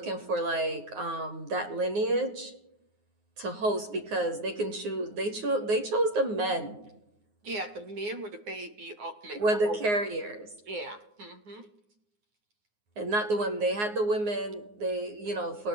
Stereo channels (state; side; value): late; left; 9.6 ms